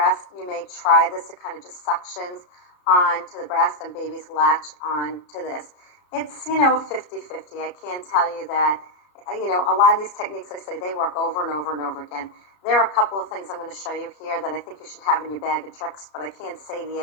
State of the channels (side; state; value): right; late; 34 ms